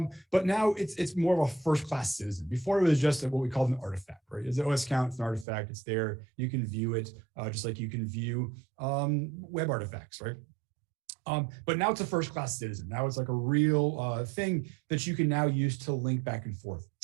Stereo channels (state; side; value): drops out; left; at 5.5 s